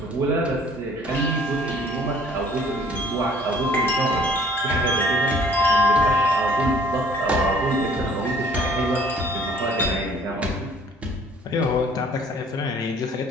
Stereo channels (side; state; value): both; normal; correlation 0.56